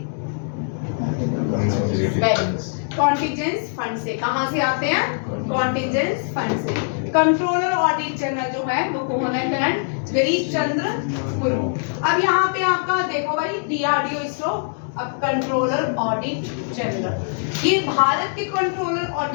कॉन्टिजेंस फंड से। कहाँ से आते हैं? कॉन्टिजेंस फंड से। कंट्रोलर ऑडिट जनरल जो है वो कौन है? करंट गिरीश चंद्र मुर्मू। अब यहाँ पे आपका देखो भाई, DRDO इसरो, अब कंट्रोलर ऑडिट जनरल, ये भारत के कंट्रोलर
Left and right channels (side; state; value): right; silent; digital silence